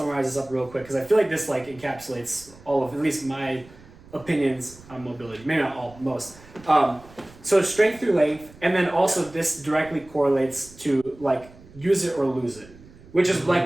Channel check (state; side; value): noise; right; rumble, 22 dB below the sound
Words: this up real quick because I feel like this like encapsulates all of at least my opinions on mobility. Maybe not all, most. So strength through length, and then also this directly correlates to like use it or lose it, which is